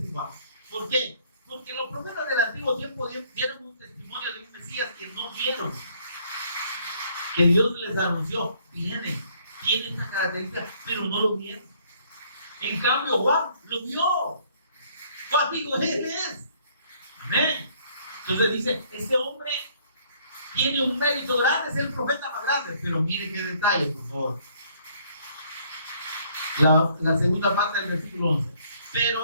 Juan. ¿Por qué? Porque los profetas del antiguo tiempo dieron un testimonio de un Mesías que no vieron, que Dios les anunció: tiene esta característica, pero no lo vieron. En cambio Juan lo vio. Juan dijo: él es. Amén. Entonces dice: este hombre tiene un mérito grande, es el profeta más grande. Pero mire qué detalle, por favor. La segunda parte del versículo 11.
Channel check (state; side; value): inverted; both; correlation -0.64